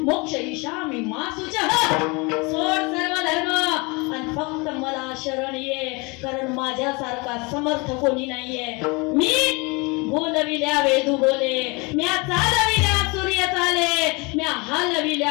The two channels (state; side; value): quieter; right; 28.0 dB